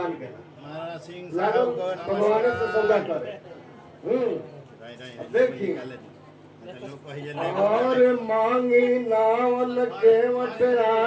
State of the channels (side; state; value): both; identical; correlation 1.00